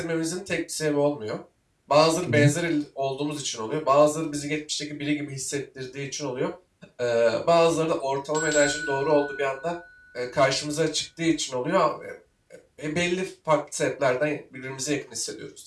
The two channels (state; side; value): identical; both; correlation 1.00